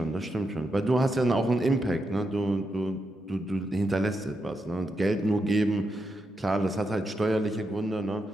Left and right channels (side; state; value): both; normal; correlation 0.84